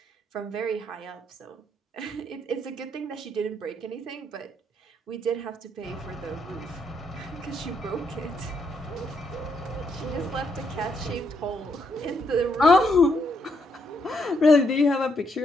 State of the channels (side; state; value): both; normal; correlation 0.76